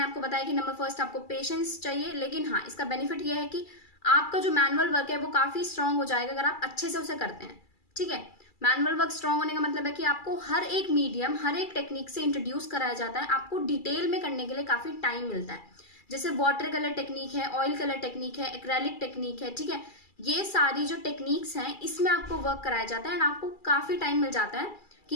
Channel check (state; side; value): late; right; 2.3 ms